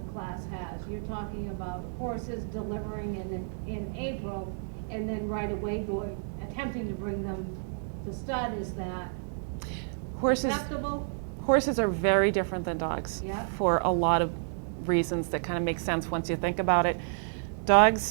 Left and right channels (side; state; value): left; silent; digital silence